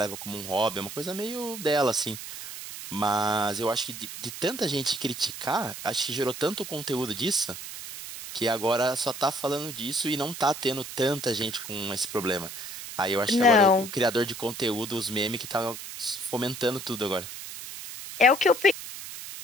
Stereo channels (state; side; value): noise; right; hiss, 10 dB below the sound